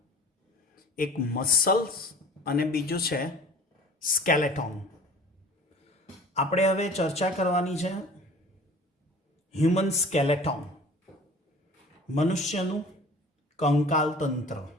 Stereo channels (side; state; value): both; normal; correlation 0.45